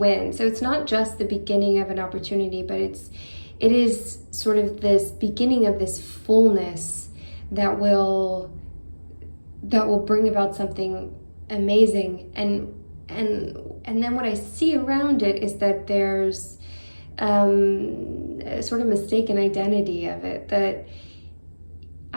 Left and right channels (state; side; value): inverted; both; correlation -1.00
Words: So it's not just the beginning of an opportunity, but it is sort of this beginning of this fullness that will bring about something amazing. And then what I see around it is that there's a sort of mistaken identity of it, that